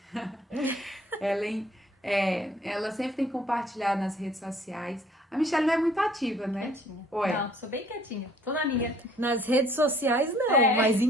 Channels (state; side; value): normal; both; correlation 0.58